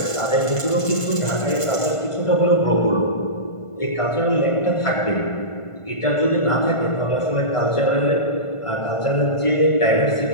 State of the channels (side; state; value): right; late; 1.5 ms